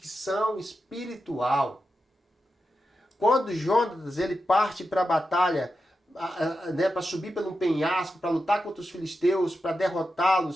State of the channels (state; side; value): normal; both; correlation 0.89